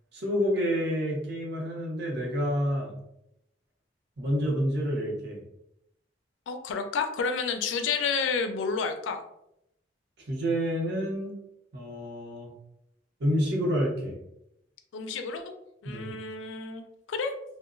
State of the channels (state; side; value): normal; both; correlation 0.51